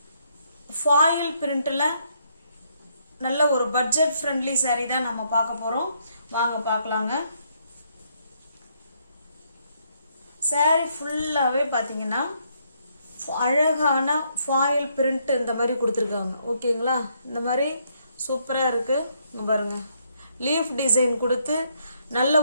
foil printல நல்ல ஒரு budget friendly saree தான் நம்ம பார்க்க போறோம். வாங்க பார்க்கலாங்க. saree ஃபுல்லாவே பாத்தீங்கன்னா அழகான foil print இந்த மாதிரி கொடுத்திருக்காங்க. ஓகேங்களா? இந்த மாதிரி சூப்பரா இருக்கு. இங்க பாருங்க. லீஃப் டிசைன் கொடுத்து நல்ல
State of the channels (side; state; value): both; inverted; correlation -0.72